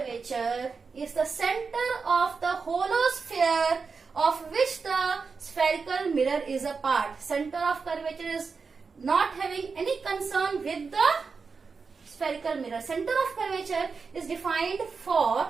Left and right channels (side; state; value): left; quieter; 5.0 dB